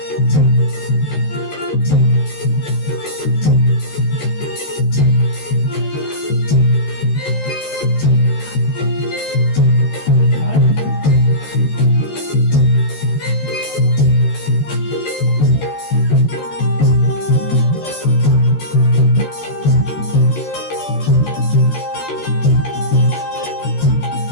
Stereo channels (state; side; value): late; right; 13 ms